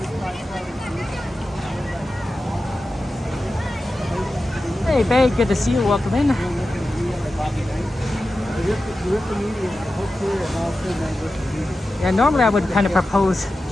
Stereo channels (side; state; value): both; normal; correlation 0.93